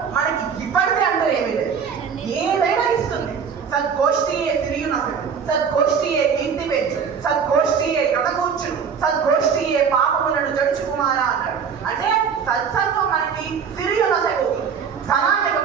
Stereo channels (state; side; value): quieter; left; 6.6 dB